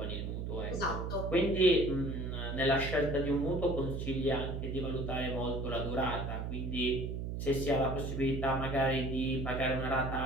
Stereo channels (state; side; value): noise; right; hum, 4 dB below the sound